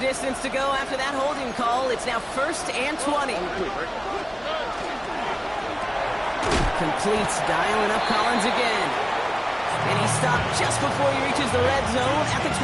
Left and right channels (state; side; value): identical; both; correlation 1.00